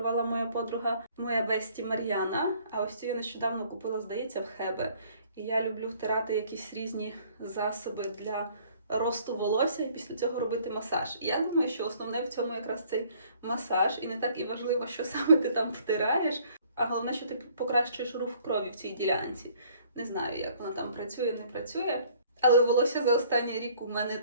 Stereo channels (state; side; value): inverted; both; correlation -0.58